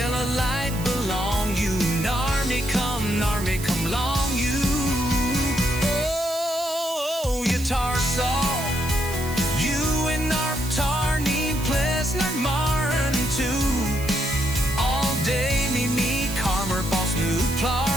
a light belong you, nar me come long you. Oh, you tar saw you in our tar need place not marin too. All day me karmer boss new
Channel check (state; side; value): noise; right; hiss, 12 dB below the sound